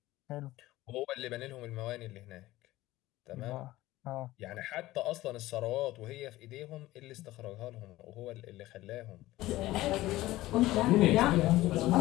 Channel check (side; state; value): right; quieter; 17.0 dB